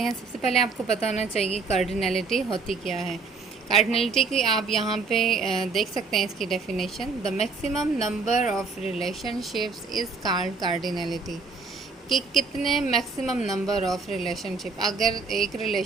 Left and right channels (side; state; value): left; quieter; 4.4 dB